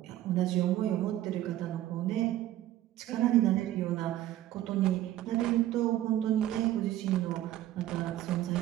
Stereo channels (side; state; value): left; quieter; 13.8 dB